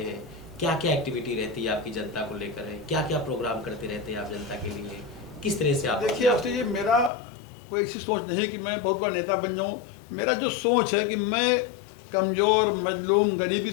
हैं? क्या क्या एक्टिविटी रहती है आपकी जनता को लेकर है? क्या क्या प्रोग्राम करते रहते हैं आप जनता के लिए? किस तरह से आप? देखिए अवस्थी जी, मेरा कोई ऐसी सोच नहीं है कि मैं बहुत बड़ा नेता बन जाऊँ। मेरा जो सोच है कि मैं कमज़ोर, मजलूम, गरीब की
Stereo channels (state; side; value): drops out; right; at 7.1 s